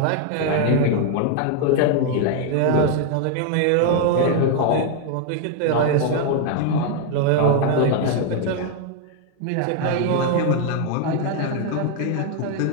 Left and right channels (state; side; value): different; both; correlation 0.01